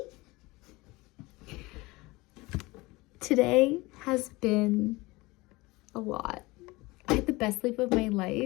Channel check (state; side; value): quieter; right; 22.2 dB